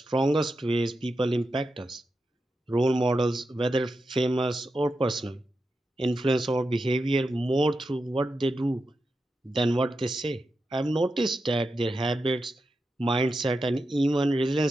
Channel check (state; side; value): normal; both; correlation 0.89